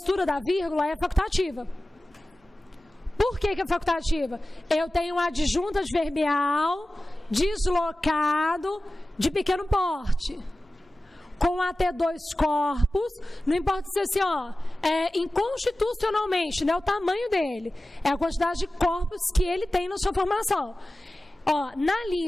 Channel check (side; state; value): both; normal; correlation 0.96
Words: da vírgula é facultativa. Por que é facultativa? Eu tenho um adjunto adverbial deslocado de pequeno porte, com até 2 corpos, não importa se assim, inconstitucionalmente, não é o tamanho dele, é a quantidade de corpos que ele tem na sua formação. Ó, na